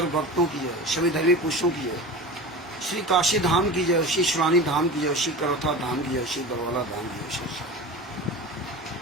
भक्तों की जय, सभी धर्मी पुरुषों की जय। श्री काशी धाम की जय, श्री शिवानी धाम की जय, श्री करौथा धाम की जय, श्री बरवाला धाम की जय।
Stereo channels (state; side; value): normal; both; correlation 0.32